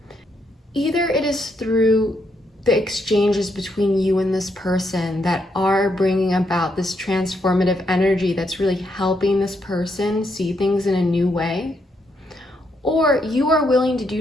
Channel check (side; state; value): both; normal; correlation 0.77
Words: Either it is through the exchanges between you and this person that are bringing about this transformative energy that's really helping this person see things in a new way, or you are willing to